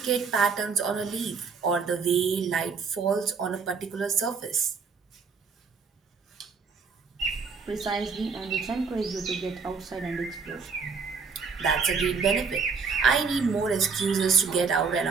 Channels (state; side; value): quieter; left; 5.3 dB